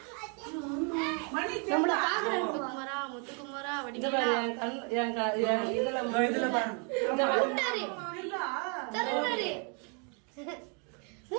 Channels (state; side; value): quieter; left; 36.9 dB